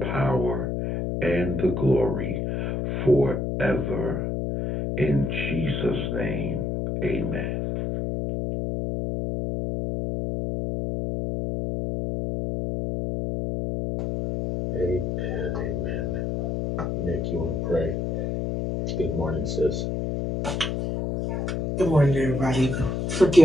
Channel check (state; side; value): noise; left; hum, 1 dB below the sound